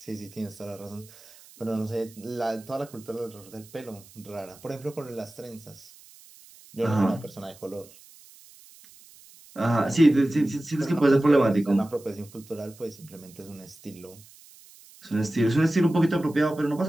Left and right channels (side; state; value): right; noise; hiss, 23 dB below the sound